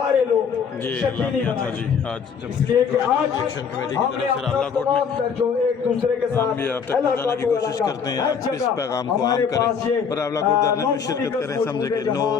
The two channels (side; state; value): right; quieter; 6.5 dB